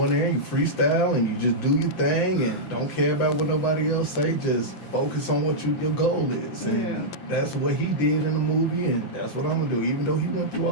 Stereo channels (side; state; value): right; late; 5.8 ms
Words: in there and you freestyle and you just do your thing and don't care about what nobody else say. Just focus on what your goal is. And Yeah. that's what he did in the movie, and that's what I'm gonna do. Even though he went through